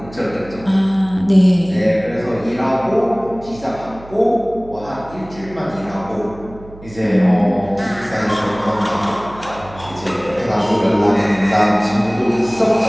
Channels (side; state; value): right; noise; hum, 19 dB below the sound